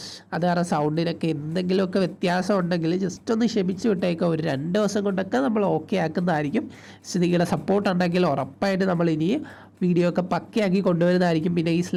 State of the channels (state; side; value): identical; both; correlation 1.00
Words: അത് കാരണം സൗണ്ടിനൊക്കെ എന്തെങ്കിലുമൊക്കെ വ്യത്യാസം ഉണ്ടെങ്കിൽ ജസ്റ്റ് ഒന്ന് ക്ഷമിച്ച് വിട്ടേക്കാം. ഒരു 2 ദിവസം കൊണ്ടൊക്കെ നമ്മൾ ഓക്കെ ആക്കുന്നതായിരിക്കും. നിങ്ങളുടെ സപ്പോർട്ട് ഉണ്ടെങ്കിൽ ഉറപ്പായിട്ട് നമ്മൾ ഇനി വീഡിയോ ഒക്കെ പക്കയാക്കി കൊണ്ടുവരുന്നതായിരിക്കും. പിന്നെ ഈ